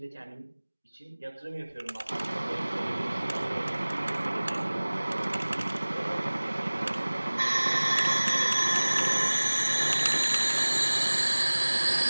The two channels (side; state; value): both; inverted; correlation -1.00